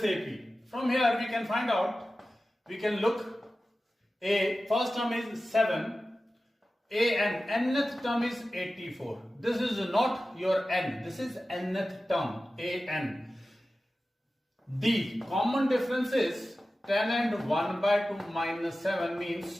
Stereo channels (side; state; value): both; normal; correlation 0.95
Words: AP. From here we can find out, we can look, A first term is 7, A and nth term is 84. This is not your n, this is nth term, A n. D common difference is 10 and 1 by 2 minus 7 means